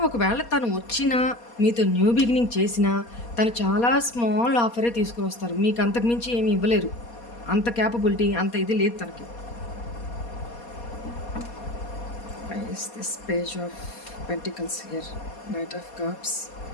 ఒకవేళ తను వచ్చినా మీతో న్యూ బిగినింగ్ చేసినా తను చాలా స్మాల్ ఆఫరే తీసుకుని వస్తారు. మీకు అంతకుమించి ఏమి ఇవ్వలేరు. అంత క్యాపబిలిటీ, అంత ఇది లేదు తనకి. Is this page of pentacles here? Knight of cups.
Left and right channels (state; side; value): late; right; 4.2 ms